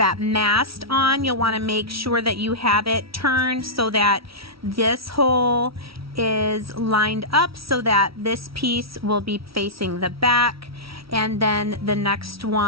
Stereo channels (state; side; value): late; left; 0.75 ms